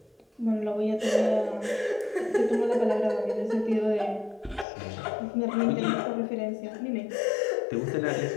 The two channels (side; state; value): right; drops out; at 4.7 s